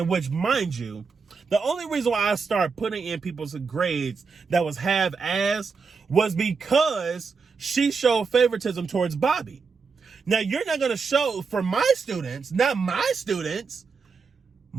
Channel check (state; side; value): quieter; left; 5.1 dB